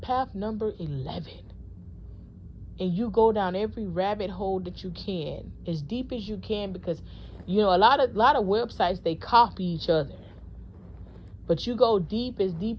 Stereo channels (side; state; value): both; identical; correlation 1.00